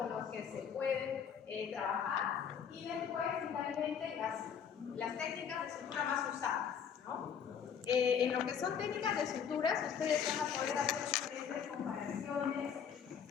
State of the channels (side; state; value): right; quieter; 7.5 dB